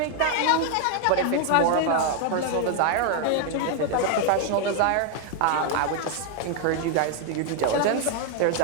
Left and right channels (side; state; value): both; different; correlation 0.00